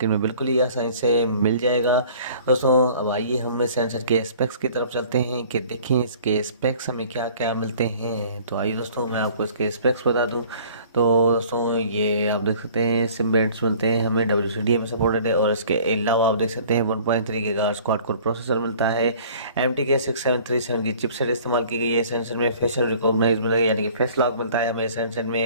में बिल्कुल ही आसानी से मिल जाएगा। दोस्तों अब आइए हम इस हैंडसेट के स्पेक्स की तरफ चलते हैं कि देखें इसके स्पेक्स हमें क्या क्या मिलते हैं। तो आइए दोस्तों मैं आपको इसके स्पेक्स बता दूँ। तो दोस्तों ये आप देख सकते हैं सिम बैंड्स मिलते हैं हमें, WCDMA में सपोर्टेड है। और इसके अलावा आप देख सकते हैं 1.3 गीगाहर्ट्ज़ क्वाड कोर प्रोसेसर मिलता है। MTK 6737 की चिपसेट इस्तेमाल की गई है। सेंसर में फेशियल रिकॉग्नाइज मिलेगा यानी कि फेस लॉक मिलता है हमें सेंसर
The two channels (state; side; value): inverted; both; correlation -0.51